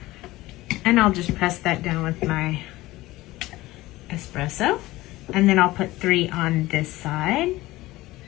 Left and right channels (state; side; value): quieter; right; 18.3 dB